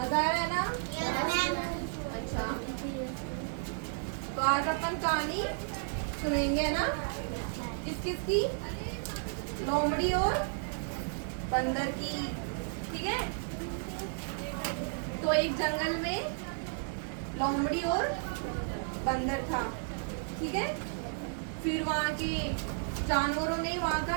आ रहा है ना? अच्छा, तो आज अपन कहानी सुनेंगे ना? किस किस की? लोमड़ी और बंदर की। ठीक है, तो एक जंगल में लोमड़ी और बंदर था। ठीक है, फिर वहाँ के जानवरों ने वहाँ का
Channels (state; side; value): silent; left; digital silence